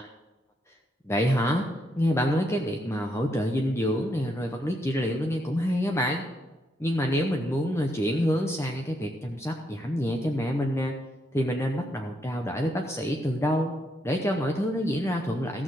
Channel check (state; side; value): normal; both; correlation 0.77